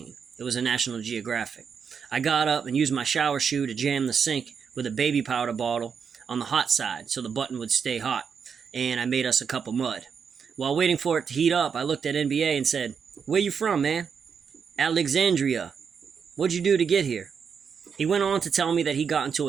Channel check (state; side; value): quieter; left; 6.5 dB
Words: It was a National Geographic. I got up and used my shower shoe to jam the sink with a baby powder bottle on the hot side so the button would stay hot, and I made us a cup of mud. While waiting for it to heat up, I looked at NBA and said, "Where you from, man?" "Alexandria." "What'd you do to get here?" He went on to tell me that he got into